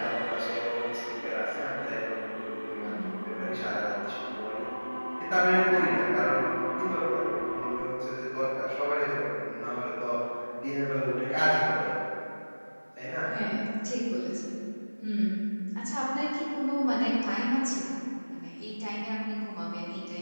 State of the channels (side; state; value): both; inverted; correlation -1.00